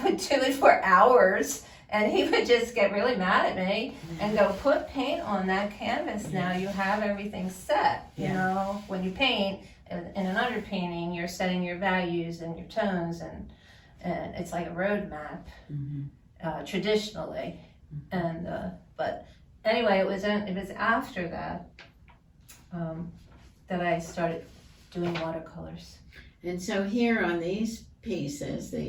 would do it for hours, and he would just get really mad at me and go, put paint on that canvas now. You have everything set. You know, when you paint in an underpainting, you're setting your values and your tones, and it's like a road map, traditionally. And but anyway, it was after that that I started doing watercolors. And so here on these pieces,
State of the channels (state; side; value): identical; both; correlation 1.00